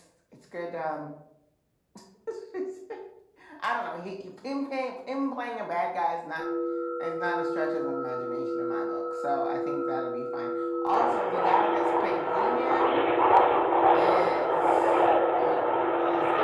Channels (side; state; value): both; identical; correlation 1.00